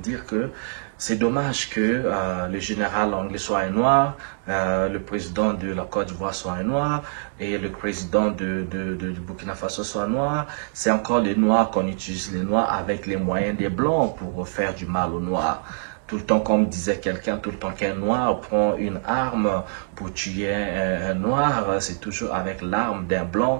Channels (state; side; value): silent; left; digital silence